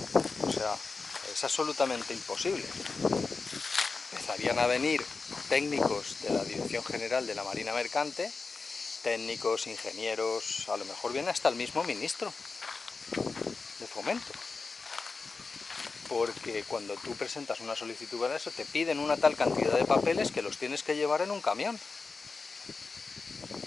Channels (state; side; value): quieter; right; 4.3 dB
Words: O sea, es absolutamente imposible. Empezarían a venir técnicos de la Dirección General de la Marina Mercante, técnicos, ingenieros, a lo mejor viene hasta el mismo ministro de Fomento. Porque cuando tú presentas una solicitud para eso, te piden una tal cantidad de papeles que los tienes que llevar en un camión.